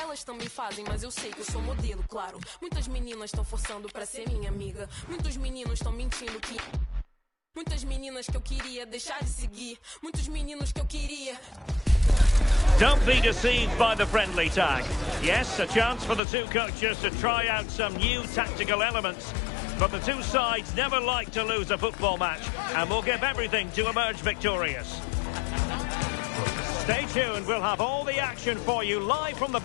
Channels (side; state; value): right; drops out; at 16.2 s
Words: Elas também fazem, mas eu sei que eu sou modelo, claro. Muitas meninas estão forçando pra ser minha amiga. Muitos meninos estão mentindo que... Muitas meninas que eu queria deixar de seguir. Muitos meninos que eu queria... Don't be deceived by the friendly tag. Yes, a chance for the two coaches to try out some new tactical elements. But the two sides never like to lose a football match, and will give everything to emerge victorious. Stay tuned, we'll have all the action for you live from the